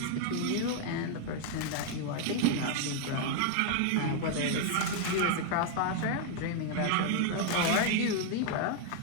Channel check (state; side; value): different; both; correlation 0.00